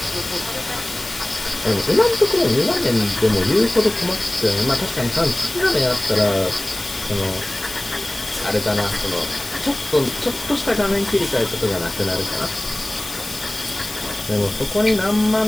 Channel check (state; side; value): noise; left; hiss, 12 dB below the sound